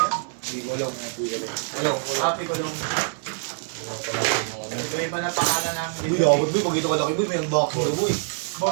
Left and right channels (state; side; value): silent; left; digital silence